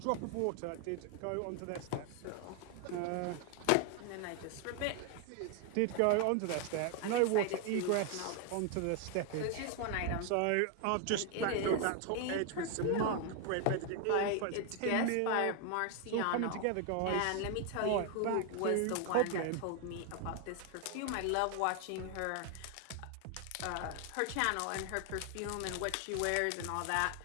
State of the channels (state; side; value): different; both; correlation 0.00